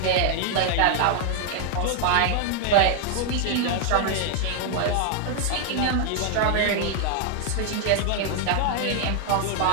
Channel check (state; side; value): different; both; correlation 0.00